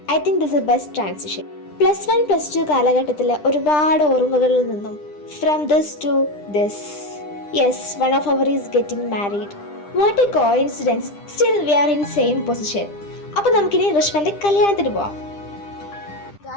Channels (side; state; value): right; late; 10 ms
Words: I think this a best transition. +1 +2 കാലഘട്ടത്തിലെ ഒരുപാട് ഓർമ്മകളിൽ നിന്നും from this to this. Yes, one of our is getting married. What a coincidence, still we are in same position. അപ്പോൾ നമുക്കിനി ഋഷ്വന്റെ കല്യാണത്തിന് പോവാം.